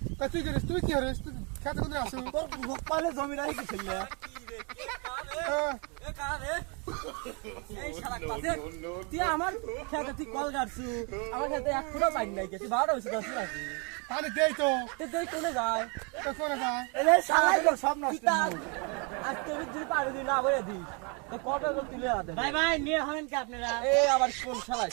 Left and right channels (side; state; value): left; quieter; 34.0 dB